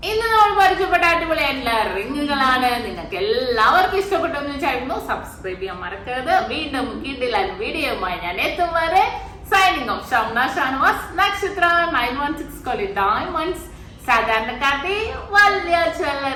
ഇന്ന് നമ്മൾ പരിചയപ്പെട്ട അടിപൊളിയായിട്ടുള്ള റിങ്ങുകളാണ്. നിങ്ങൾക്ക് എല്ലാവർക്കും ഇഷ്ടപ്പെട്ടു എന്ന് വിചാരിക്കുന്നു. സബ്സ്ക്രൈബ് ചെയ്യാൻ മറക്കരുത്. വീണ്ടും കിടിലൻ വീഡിയോയുമായി ഞാൻ എത്തും വരെ സൈനിങ് ഓഫ്. ഷംന ഷാനവാസ്, നക്ഷത്ര 916 ഡയമണ്ട്സ്, സാധാരണക്കാട്ടി വലിയ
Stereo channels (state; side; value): identical; both; correlation 1.00